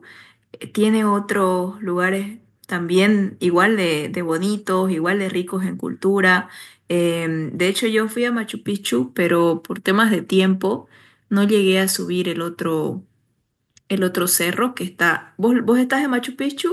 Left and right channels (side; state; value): both; identical; correlation 1.00